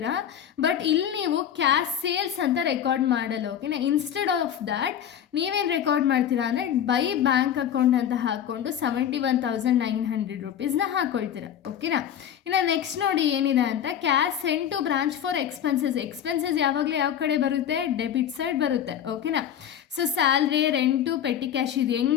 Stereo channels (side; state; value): right; quieter; 9.6 dB